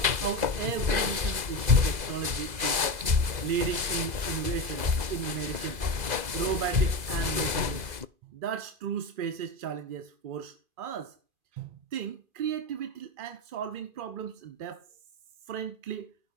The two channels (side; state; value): left; late; 2.0 ms